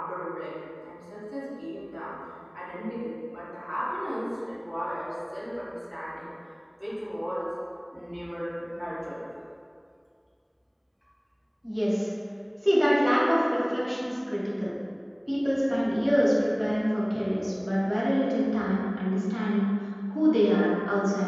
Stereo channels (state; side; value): identical; both; correlation 1.00